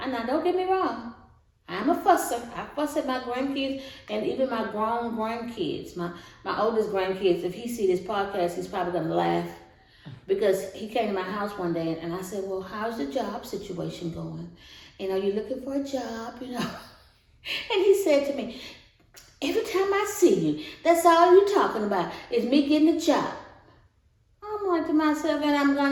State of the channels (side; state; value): both; identical; correlation 1.00